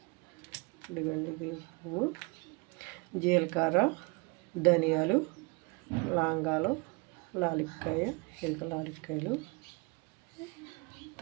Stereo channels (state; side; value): quieter; left; 28.9 dB